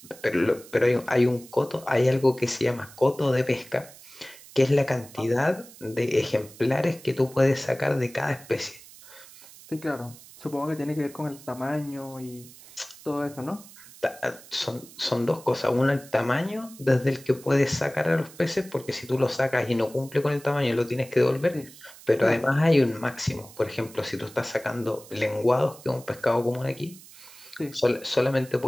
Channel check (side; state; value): right; noise; hiss, 20 dB below the sound